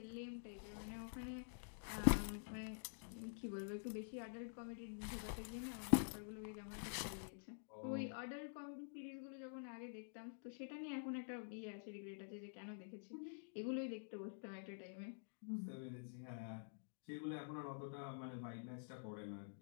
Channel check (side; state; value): right; silent; digital silence